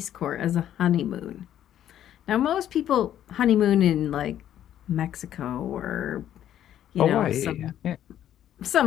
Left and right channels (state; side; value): quieter; right; 11.2 dB